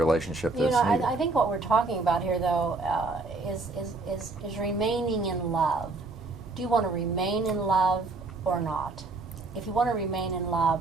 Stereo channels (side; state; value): left; quieter; 3.5 dB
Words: that's needed. I think what we're talking about here, though, is remaining in love. Do you want to remain in love or not? If you want to remain in